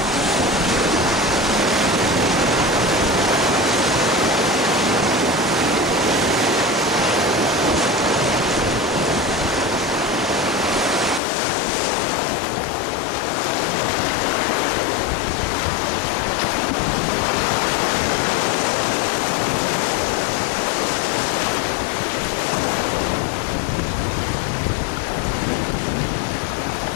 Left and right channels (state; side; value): drops out; right; at 11.2 s